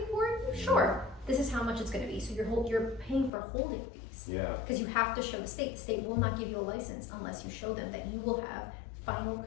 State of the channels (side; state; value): right; drops out; at 3.3 s